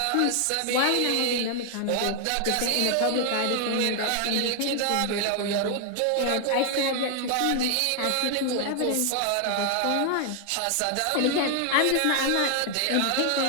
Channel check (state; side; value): different; both; correlation 0.00